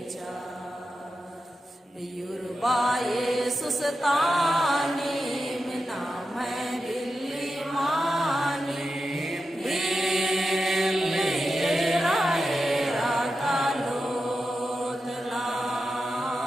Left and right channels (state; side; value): normal; both; correlation 0.90